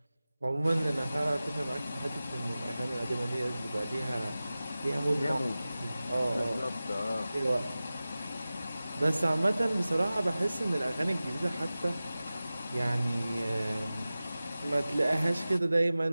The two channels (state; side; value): inverted; both; correlation -0.96